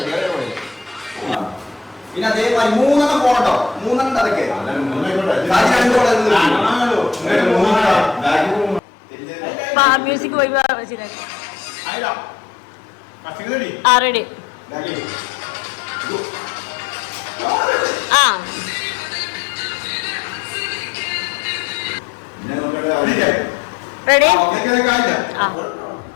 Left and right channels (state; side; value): drops out; right; at 8.8 s